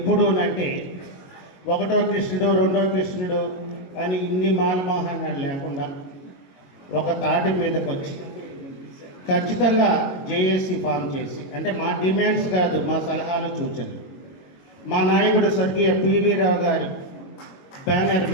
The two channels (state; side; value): late; right; 22 ms